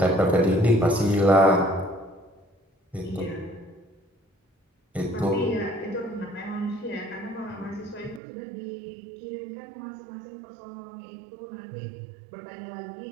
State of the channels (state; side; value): drops out; left; at 8.2 s